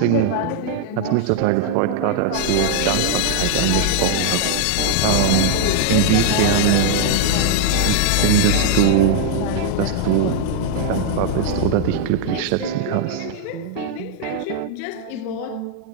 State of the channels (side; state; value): both; different; correlation 0.00